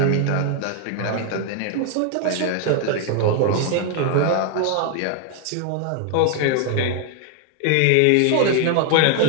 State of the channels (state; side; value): different; both; correlation 0.00